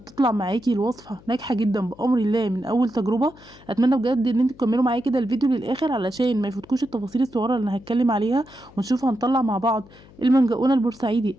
معاكي الوصفة ناجحة جدا بأمر الله من أول تجربة. أتمنى بجد إن انتوا تكملوا معايا كده الفيديو للآخر علشان ما يفوتكوش التفاصيل الصغيرة اللي أنا هتكلم عليها، ونشوف هنطلع مع بعض المنجقونة البورسعيدي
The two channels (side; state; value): left; noise; hum, 24 dB below the sound